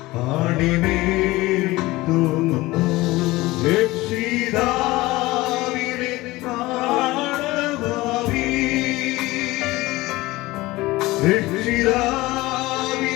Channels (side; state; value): right; quieter; 19.6 dB